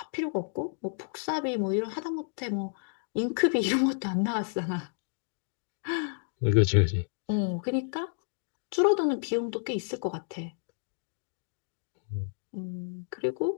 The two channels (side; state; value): right; silent; digital silence